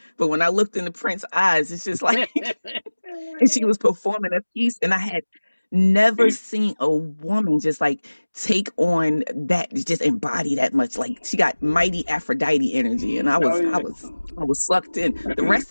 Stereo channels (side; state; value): both; inverted; correlation -1.00